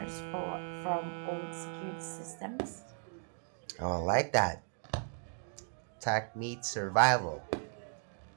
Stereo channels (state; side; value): silent; left; digital silence